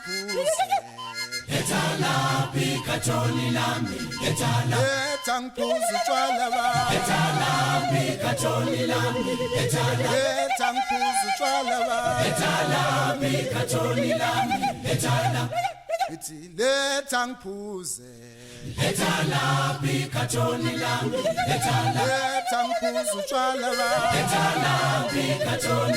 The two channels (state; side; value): identical; both; correlation 1.00